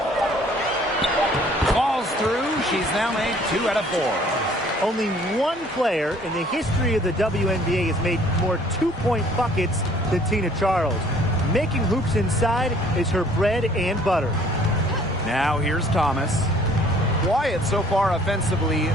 Falls through. She's now made 2 out of 4. Only one player in the history of the WNBA has made more two-point buckets than Tina Charles. Making hoops inside is her bread and butter. Now here's Thomas. Wyatt so far offensively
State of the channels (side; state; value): both; normal; correlation 0.56